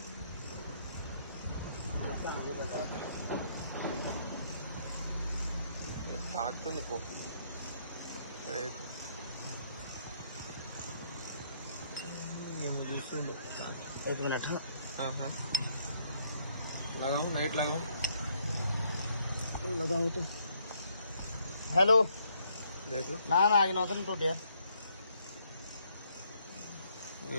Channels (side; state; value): both; inverted; correlation -0.69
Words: తాకుతుంది పో. एक मिनट. हाँ लगाओ लाइट लगाओ तो. हेलो देख लो. ना आगे नौतन टूट यार.